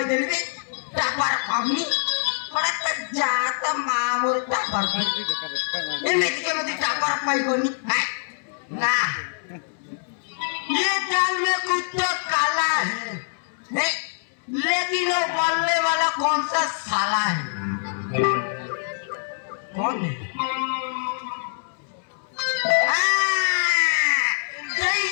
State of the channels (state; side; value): silent; right; 62 dB below the other